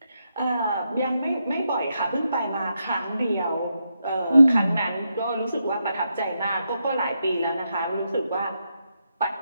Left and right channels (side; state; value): both; inverted; correlation -0.83